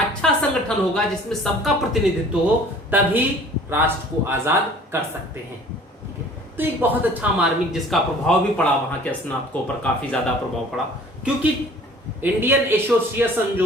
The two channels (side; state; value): both; normal; correlation 0.50